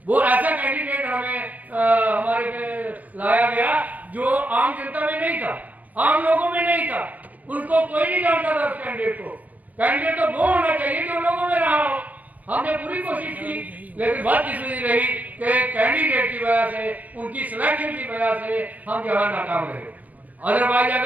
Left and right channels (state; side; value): late; left; 0.078 ms